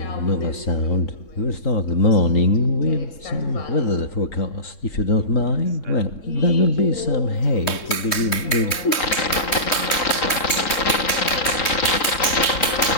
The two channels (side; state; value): right; late; 3.2 ms